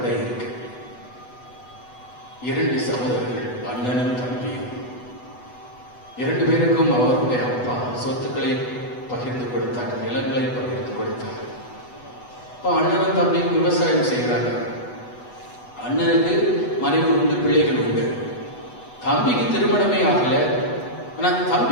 இருக்கு. 2 சகோதரர்கள், அண்ணனும் தம்பியும். 2 பேருக்கும் அவருடைய அப்பா சொத்துக்களை பகிர்ந்து கொடுத்தாங்க, நிலங்களை பகிர்ந்து கொடுத்தாங்க. இப்போ அண்ணனும் தம்பியும் விவசாயம் செய்கிறாங்க. அண்ணனுக்கு மனைவி உண்டு, பிள்ளைகள் உண்டு. தம்பிக்கு திருமணமே ஆகல. ஆனா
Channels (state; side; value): late; right; 8.1 ms